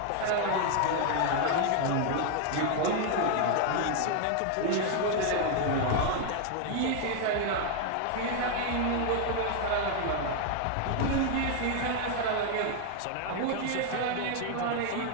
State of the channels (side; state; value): both; different; correlation 0.00